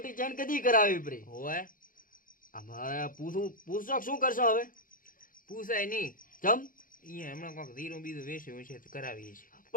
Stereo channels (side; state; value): right; late; 0.40 ms